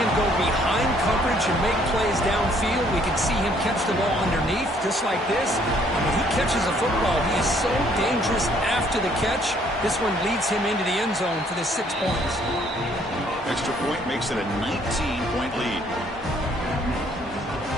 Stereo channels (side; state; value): both; normal; correlation 0.64